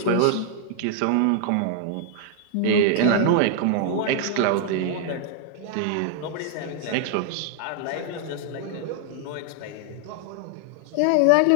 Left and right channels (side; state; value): both; different; correlation 0.00